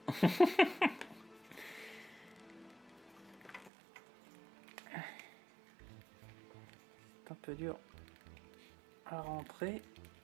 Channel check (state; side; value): drops out; left; at 3.7 s